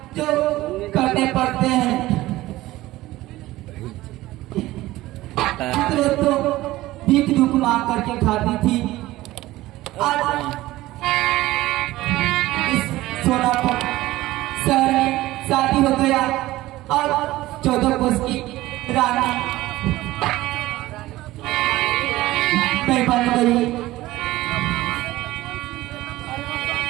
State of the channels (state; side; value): quieter; left; 17.2 dB